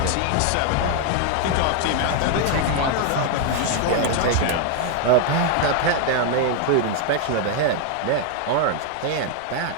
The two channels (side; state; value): both; different; correlation 0.00